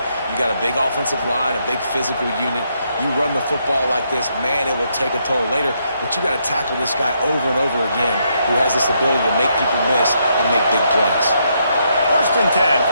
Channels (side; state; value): both; inverted; correlation -0.76